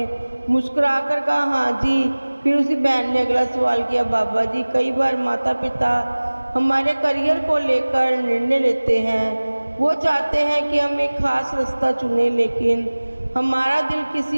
मुस्कुराकर कहा, हाँ जी। फिर उसी बहन ने अगला सवाल किया, बाबा जी कई बार माता पिता हमारे करियर को लेकर निर्णय लेते हैं। वो चाहते हैं कि हम एक खास रास्ता चुनें, लेकिन हमारा दिल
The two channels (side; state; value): both; inverted; correlation -1.00